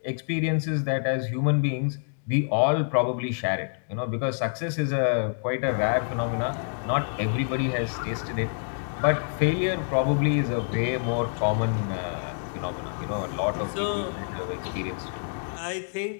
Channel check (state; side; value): silent; right; digital silence